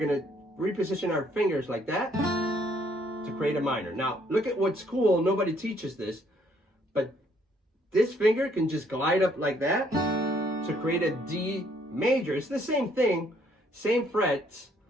to reposition our fingers like that to create a minor. Now, look at what's cool. Nobody teaches this, but this finger can just glide up like that to create a D major. It's the same thing, same frets,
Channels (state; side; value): normal; both; correlation 0.66